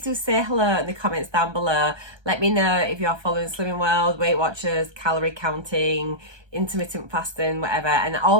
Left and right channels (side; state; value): left; late; 1.3 ms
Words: do say hello in the comments down below. Let me know if you're following Slimming World, Weight Watchers, calorie counting, intermittent fasting, whatever, and